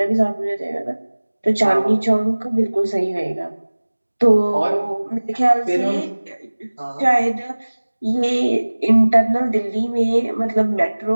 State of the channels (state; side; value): inverted; both; correlation -1.00